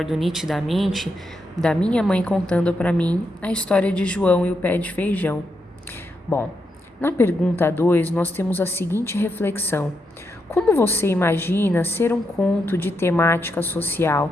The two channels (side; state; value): both; normal; correlation 0.82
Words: nitidamente da minha mãe contando para mim a história de João e o Pé de Feijão. Bom, na pergunta 2 nós temos a seguinte reflexão: como você imagina ser um conto de temática social?